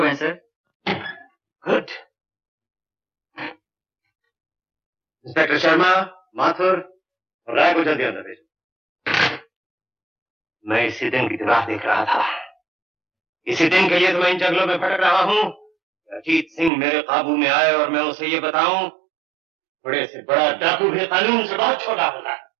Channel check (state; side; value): drops out; left; at 16.7 s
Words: गए sir. Good. Inspector Sharma, Mathur और राय को जल्दी अंदर भेजो। मैं इसी दिन की राह देख रहा था। इसी दिन के लिए तो मैं इन जंगलों में भटक रहा हूँ। अजीत सिंह मेरे काबू में आए और मैं उसे ये बताऊं, बड़े से बड़ा डाकू भी कानून से बहुत छोटा होता है।